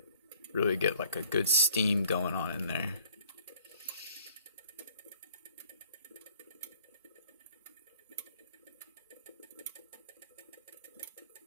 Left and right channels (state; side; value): inverted; both; correlation -0.57